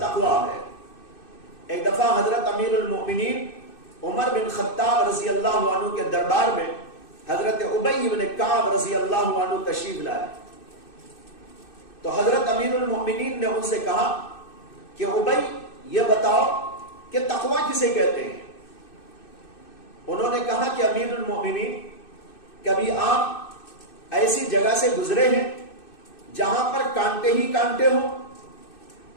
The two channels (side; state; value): right; late; 2.6 ms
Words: تقوی ہے۔ ایک دفعہ حضرت امیر المؤمنین عمر بن خطاب رضی اللہ عنہ کے دربار میں حضرت ابی بن کعب رضی اللہ عنہ تشریف لائے، تو حضرت امیر المؤمنین نے ان سے کہا کہ ابی یہ بتاؤ کہ تقوی کسے کہتے ہیں؟ انہوں نے کہا کہ امیر المؤمنین، کبھی آپ ایسی جگہ سے گزرے ہیں جہاں پر کانٹے ہی کانٹے ہوں؟